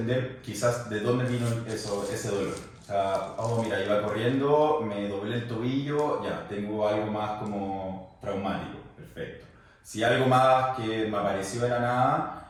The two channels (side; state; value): both; identical; correlation 1.00